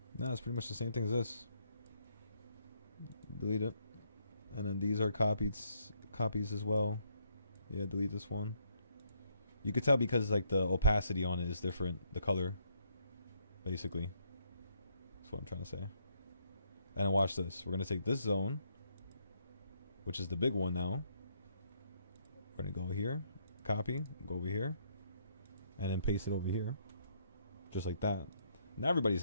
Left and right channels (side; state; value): both; inverted; correlation -0.71